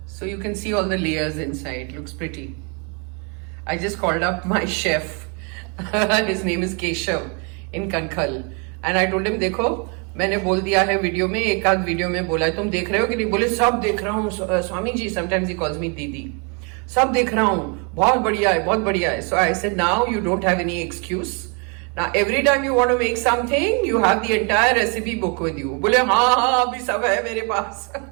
So you can see all the layers inside. Looks pretty. I just called up my chef. His name is Keshav in Kankhal. And I told him, देखो मैंने बोल दिया है video में, एक आध video में बोला है, तुम देख रहे हो कि नहीं? बोले सब देख रहा हूँ Swami ji. Sometimes he calls me दीदी. सब देख रहा हूँ, बहुत बढ़िया है, बहुत बढ़िया है. So I said, now you don't have any excuse. Now every time you want to make something, you have the entire recipe book with you. बोले हाँ अभी सब है मेरे पास.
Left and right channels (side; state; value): left; quieter; 34.9 dB